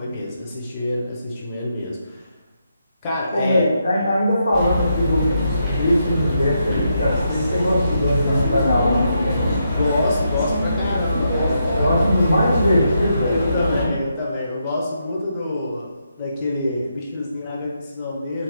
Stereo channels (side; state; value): both; inverted; correlation -0.81